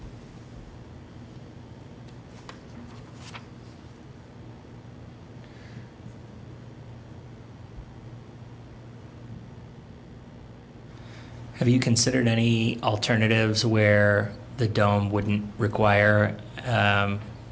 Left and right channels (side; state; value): both; identical; correlation 1.00